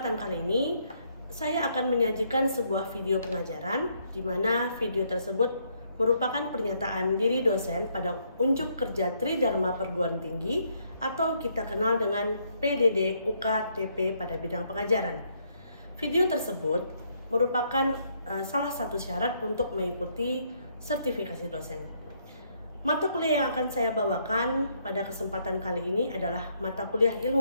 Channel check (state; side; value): inverted; both; correlation -0.72